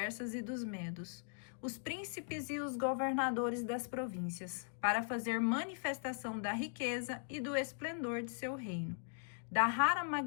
e dos medos, os príncipes e os governadores das províncias, para fazer manifestação da riqueza e do esplendor de seu reino, da rara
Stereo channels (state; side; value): silent; right; digital silence